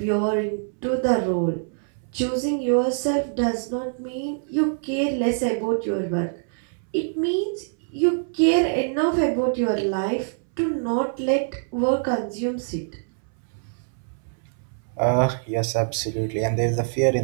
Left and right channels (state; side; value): silent; left; 62 dB below the other